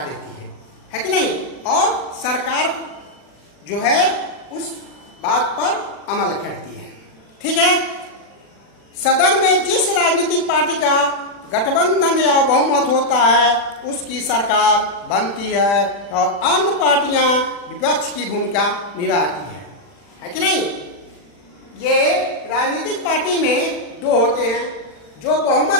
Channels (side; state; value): right; late; 40 ms